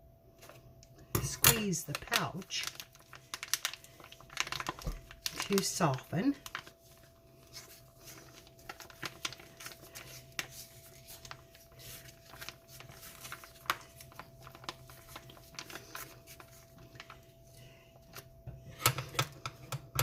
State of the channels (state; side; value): identical; both; correlation 1.00